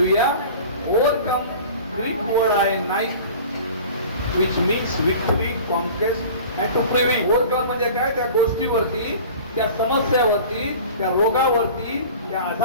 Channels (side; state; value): both; inverted; correlation -0.41